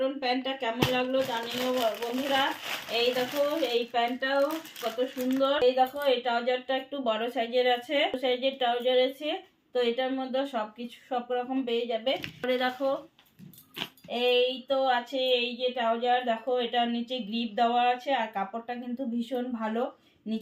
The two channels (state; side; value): identical; both; correlation 1.00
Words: প্যান্টটা কেমন লাগলো জানিও বন্ধুরা। এই দেখো এই প্যান্টটাও কত সুন্দর। এই দেখো এই ট্রাউজারটা একটু বড় সাইজের আছে, সাইজের ট্রাউজার আছে। তো এটার মধ্যে সবকিছু সব রকম পেয়ে যাবে। পরে দেখো এই তো আছে এই যে ট্রাউজার, দেখো এটার নিচে গ্রিপ দেওয়া আছে আর কাপড়টা কিন্তু ভীষণ ভালো,